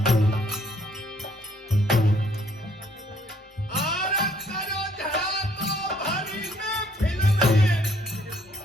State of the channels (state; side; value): normal; both; correlation 0.64